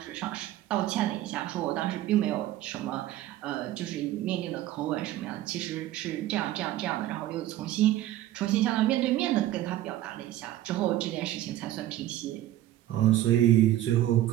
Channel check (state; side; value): quieter; left; 14.0 dB